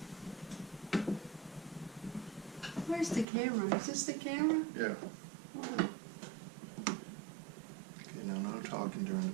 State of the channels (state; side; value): drops out; left; at 3.2 s